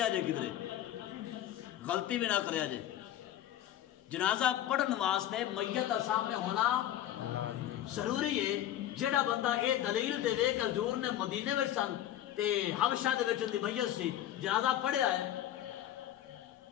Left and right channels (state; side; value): quieter; right; 12.2 dB